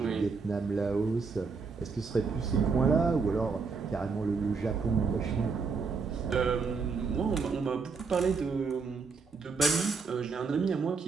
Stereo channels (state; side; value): quieter; left; 4.9 dB